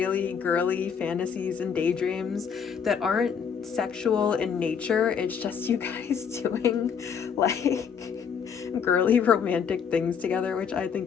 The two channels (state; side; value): quieter; right; 7.0 dB